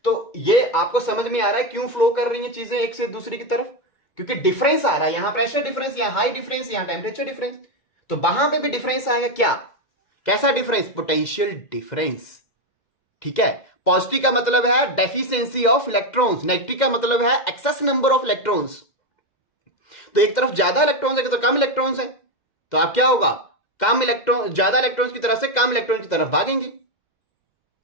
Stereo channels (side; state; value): right; late; 2.1 ms